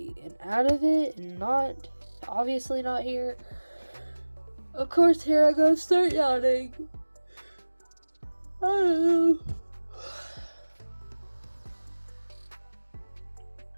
and out of it and not, obviously not here. Of course, here I go, start yawning. I don't know.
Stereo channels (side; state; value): both; inverted; correlation -1.00